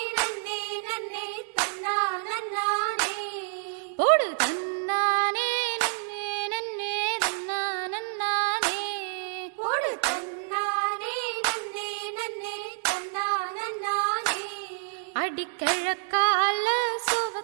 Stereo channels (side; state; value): left; silent; digital silence